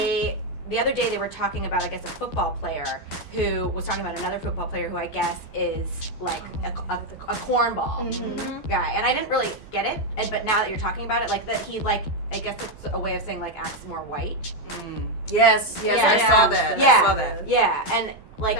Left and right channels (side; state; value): right; late; 12 ms